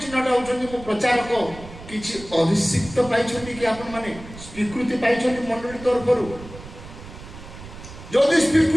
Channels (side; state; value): right; noise; rumble, 15 dB below the sound